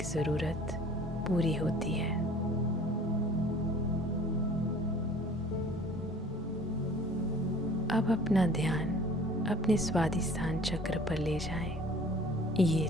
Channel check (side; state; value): both; normal; correlation 0.50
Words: ज़रूरत पूरी होती है। अब अपना ध्यान अपने स्वादिष्ठान चक्र पर ले जाएं। ये